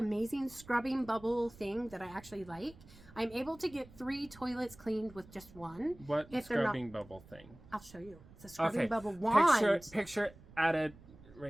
scrubbing bubble thing that I actually like. I'm able to get 3 toilets cleaned with just one. What if they're scrubbing bubble thing? I'll show you. It's a scrubbing Okay, bubble wand. picture added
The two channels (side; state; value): right; noise; rumble, 22 dB below the sound